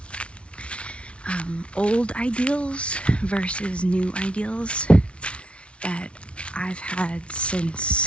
old ideals versus new ideals that I've had since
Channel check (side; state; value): right; late; 0.060 ms